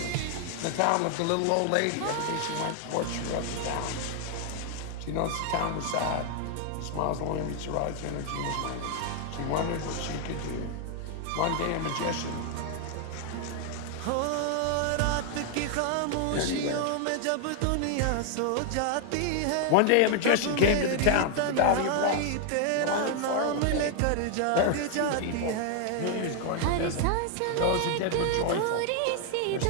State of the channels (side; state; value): both; different; correlation 0.00